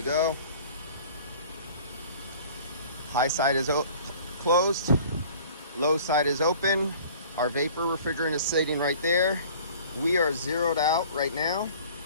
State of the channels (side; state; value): both; inverted; correlation -0.48